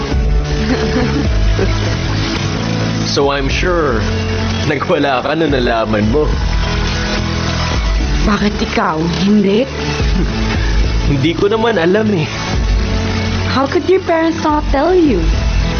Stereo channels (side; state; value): both; identical; correlation 1.00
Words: So I'm sure nagwala ka na nalaman mo. Bakit ikaw? Hindi? Hindi ko naman alam eh. How could your parents not tell you?